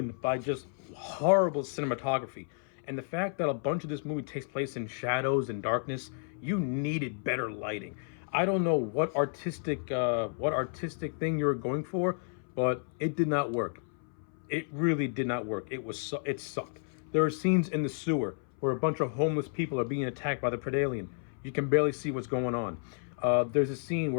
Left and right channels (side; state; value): right; silent; 57 dB below the other